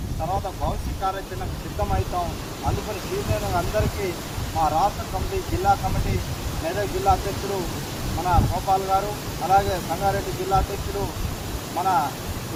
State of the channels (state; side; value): identical; both; correlation 1.00